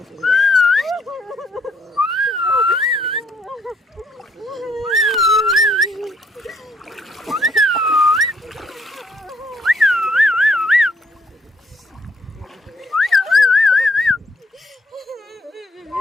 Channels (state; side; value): normal; both; correlation 0.69